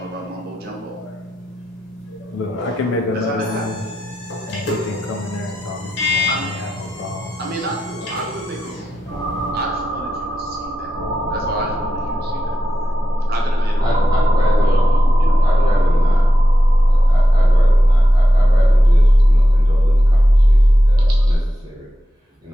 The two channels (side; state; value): both; normal; correlation 0.90